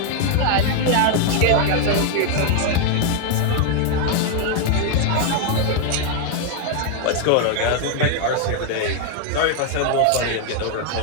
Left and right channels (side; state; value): both; different; correlation 0.01